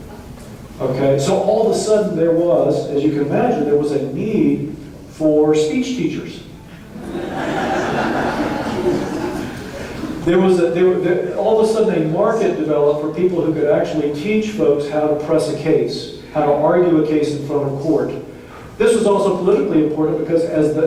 Okay, so all of a sudden there was, as you can imagine, there was a need for speech teachers. All of a sudden a market developed for people who could actually teach folks how to press a case, how to argue a case in front of court. This was also politically important because as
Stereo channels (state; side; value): identical; both; correlation 1.00